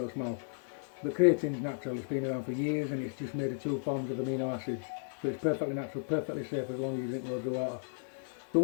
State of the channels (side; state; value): right; silent; 55 dB below the other